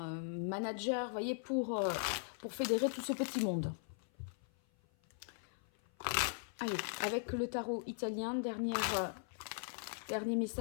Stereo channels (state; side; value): silent; right; 52 dB below the other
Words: manager, voyez, pour fédérer tout ce petit monde. Allez, avec le tarot italien, dernier